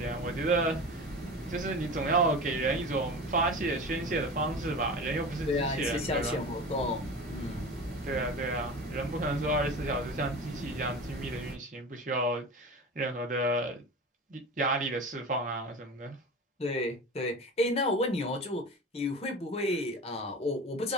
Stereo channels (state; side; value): normal; both; correlation 0.32